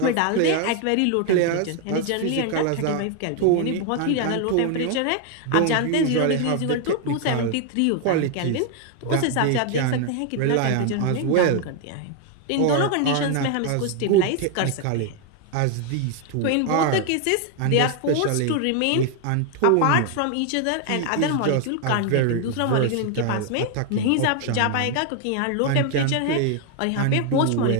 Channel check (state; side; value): different; both; correlation 0.01